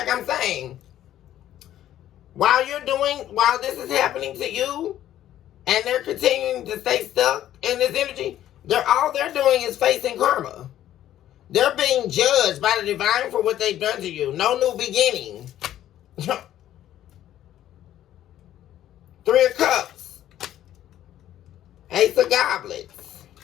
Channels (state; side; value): quieter; right; 12.2 dB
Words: I'm saying, while this is happening to you, and they're continuing to stay stuck in this energy, all they're doing is facing karma. They're being judged by the divine for what they've done to you. No new beginning. 3 of Cups. Ace of Goblets.